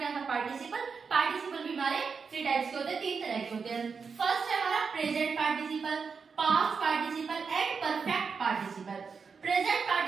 था पार्टिसिपल। पार्टिसिपल भी हमारे 3 टाइप्स के होते हैं, 3 तरह के होते हैं। फर्स्ट है हमारा present participle, past participle and perfect participle. Present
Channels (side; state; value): left; quieter; 5.5 dB